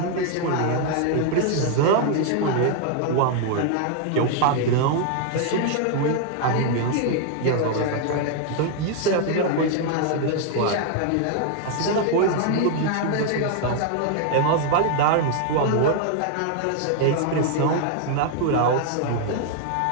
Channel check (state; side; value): different; both; correlation 0.00